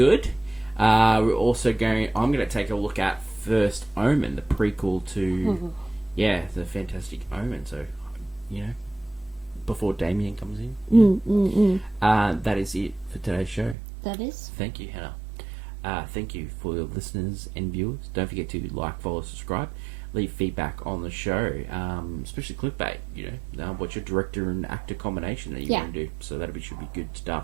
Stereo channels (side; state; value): left; drops out; at 13.8 s